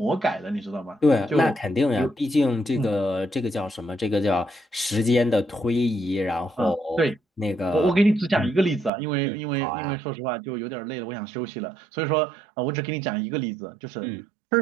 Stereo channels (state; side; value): drops out; left; at 8.9 s